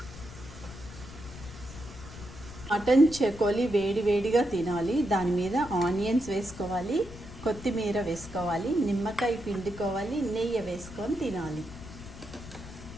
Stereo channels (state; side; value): noise; left; rumble, 14 dB below the sound